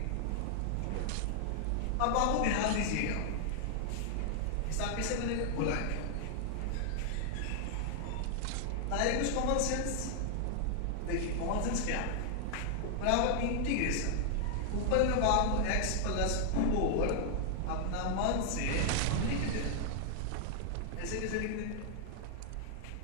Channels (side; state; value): both; different; correlation 0.00